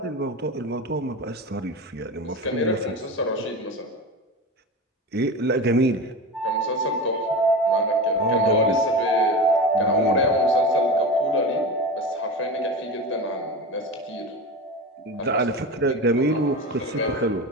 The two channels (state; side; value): normal; both; correlation 0.26